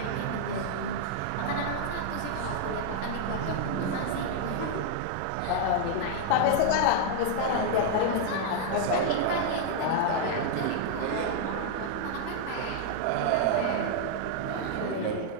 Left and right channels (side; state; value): both; different; correlation -0.01